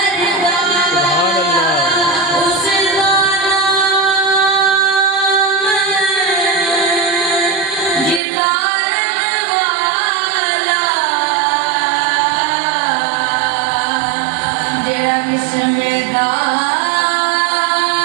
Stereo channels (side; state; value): left; drops out; at 8.2 s